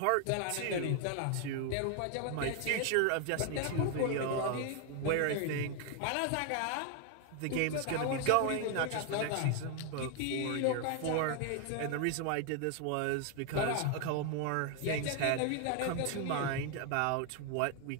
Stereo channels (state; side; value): different; both; correlation 0.00